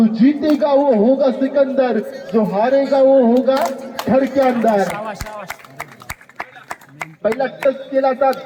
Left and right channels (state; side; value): identical; both; correlation 1.00